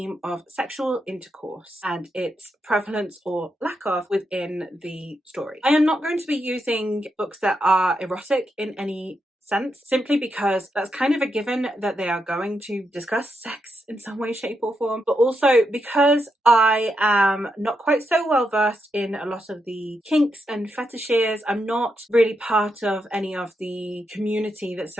of sexual intercourse and its prevalence or lack of within the story. I am not going to be using books that are erotic in any sense, simply because that's kind of a given that they are going to discuss sex in some way, shape or form, but also because I am not quite so well versed in a lot of the kinks and fetishes. I'm not really part of any of the community that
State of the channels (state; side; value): normal; both; correlation 0.83